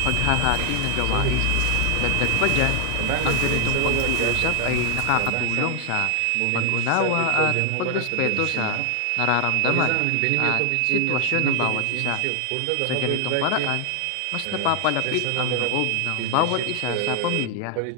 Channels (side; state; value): both; different; correlation 0.00